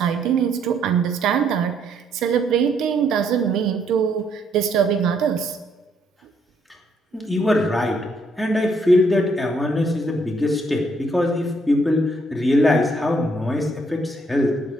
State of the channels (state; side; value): normal; both; correlation 0.70